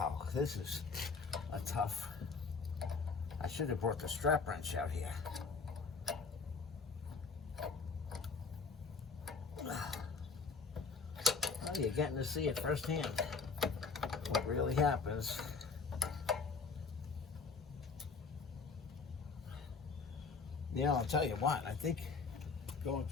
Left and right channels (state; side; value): quieter; right; 4.8 dB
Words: this is a tough. I should have brought the strap wrench out here. Well, you're getting to see it firsthand. What really happens. You know, I'll tell you what, I think going